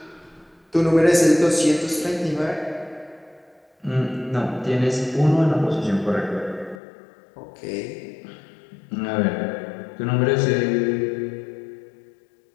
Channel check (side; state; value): right; drops out; at 6.8 s